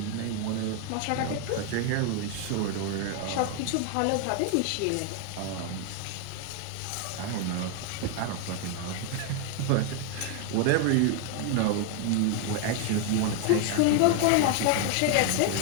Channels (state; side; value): different; both; correlation 0.01